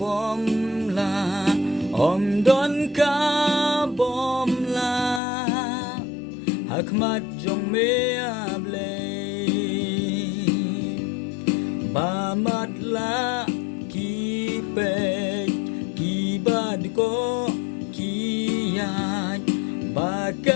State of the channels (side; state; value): right; drops out; at 5.2 s